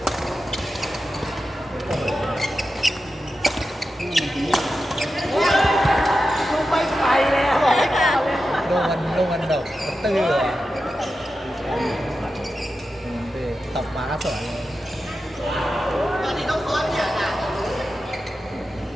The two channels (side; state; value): both; normal; correlation 0.91